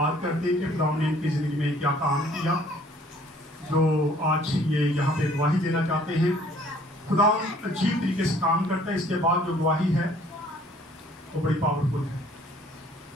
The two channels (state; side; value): normal; both; correlation 0.57